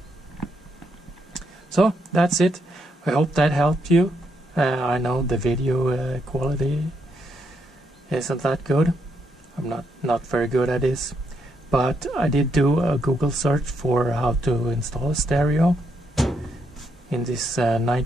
So that's it. I hope that helped you. I know the video quality isn't that good. I'm not very good at this. But I did do a Google search for how to install a stereo in this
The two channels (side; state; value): both; normal; correlation 0.78